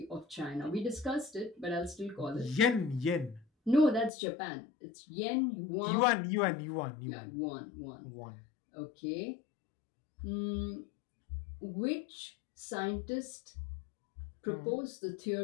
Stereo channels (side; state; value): right; drops out; at 4.1 s